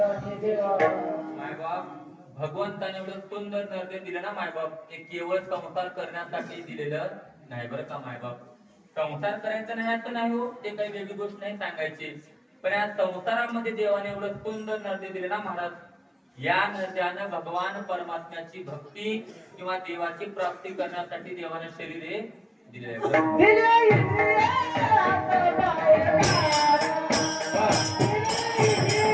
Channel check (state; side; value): identical; both; correlation 1.00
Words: मायबाप भगवंताने एवढं सुंदर नर्दे दिलं ना मायबाप, ते केवळ संसार करण्यासाठी दिलेलं नाही बरं का मायबाप. संसार करायचा नाही असं नाही हो, ते काही वेगळी गोष्ट नाही सांगायची, पण या संसारामध्ये देवाने एवढं सुंदर नर्दे दिले ना महाराज, या नद्यानं भगवान परमात्म्याची भक्ती किंवा देवाची प्राप्ती करण्यासाठी देवाने शरीरे दिले